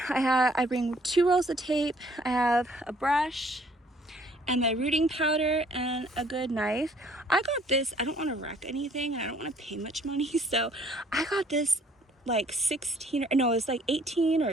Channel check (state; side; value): normal; both; correlation 0.60